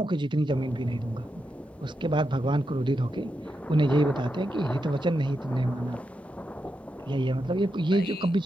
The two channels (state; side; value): normal; both; correlation 0.86